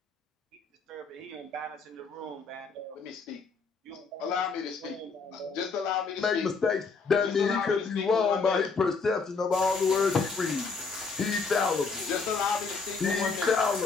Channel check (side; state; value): right; quieter; 4.7 dB